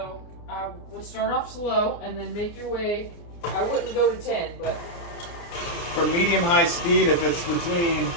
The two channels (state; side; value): late; right; 29 ms